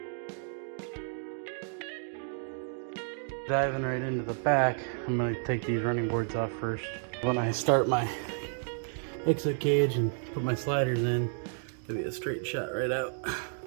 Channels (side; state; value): left; silent; 57 dB below the other